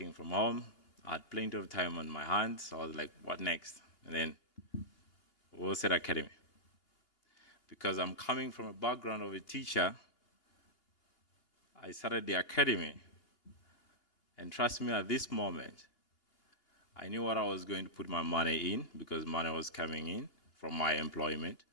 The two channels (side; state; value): right; late; 2.8 ms